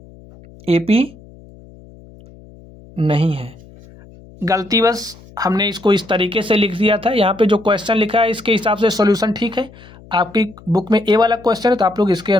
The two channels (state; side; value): noise; left; hum, 22 dB below the sound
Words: AP नहीं है। गलती बस हमने इसको इस तरीके से लिख दिया था। यहाँ पे जो क्वेश्चन लिखा है इसके हिसाब से सॉल्यूशन ठीक है। आपकी बुक में ए वाला क्वेश्चन है तो आप लोग इसके